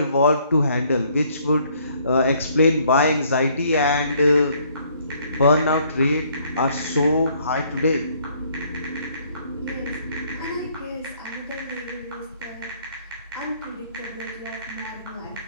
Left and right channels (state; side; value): inverted; both; correlation -0.64